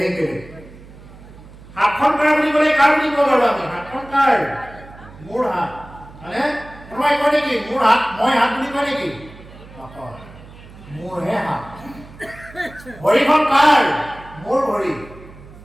বেলেগ হাতখন কাৰ বুলি ক'লে কাৰ বুলি ক'ব পাৰোঁ আমি হাতখন কাৰ মোৰ হাত মানে কোনোবাই কয় নেকি মোৰ হাত মই হাত বুলি কয় নেকি নকয় মোৰহে হাত ভৰিখন কাৰ মোৰ ভৰি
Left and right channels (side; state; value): right; noise; hum, 19 dB below the sound